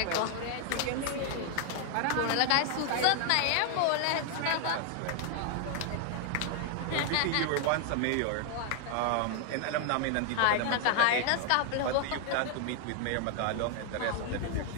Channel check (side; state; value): both; different; correlation 0.00